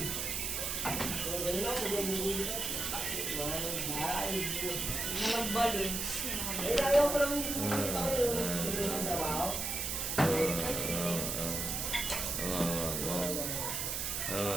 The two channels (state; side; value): noise; right; hiss, 1 dB below the sound